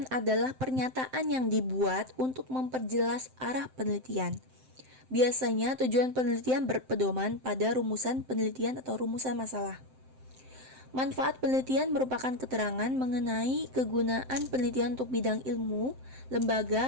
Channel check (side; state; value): left; late; 7.7 ms